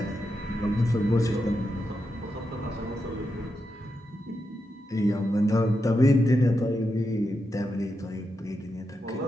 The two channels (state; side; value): normal; both; correlation 0.86